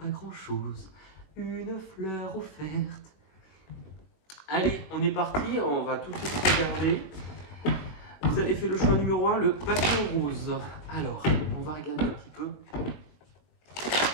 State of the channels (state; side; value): late; right; 21 ms